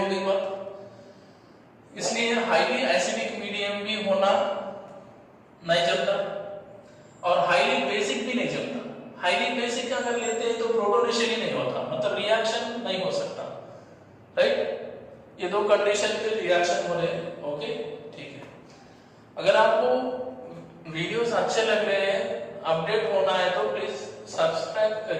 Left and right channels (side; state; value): both; identical; correlation 1.00